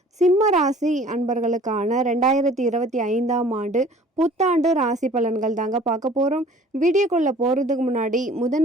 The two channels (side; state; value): both; normal; correlation 0.50